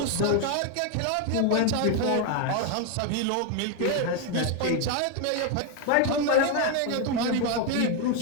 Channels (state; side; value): different; both; correlation 0.01